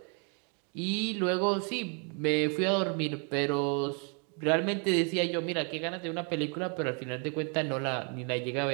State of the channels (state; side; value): quieter; left; 37.9 dB